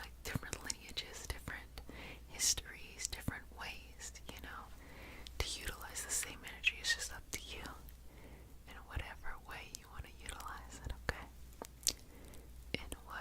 different lineages, different histories, different ways, to utilize the same energy. It's just up to you in whatever way you want to utilize it, okay? In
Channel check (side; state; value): both; identical; correlation 1.00